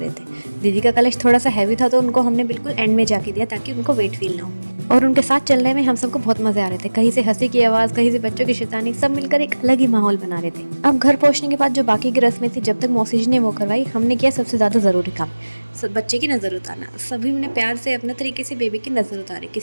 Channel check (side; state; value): both; inverted; correlation -1.00